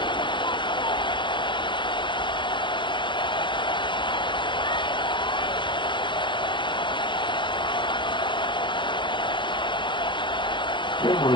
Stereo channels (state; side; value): late; right; 0.23 ms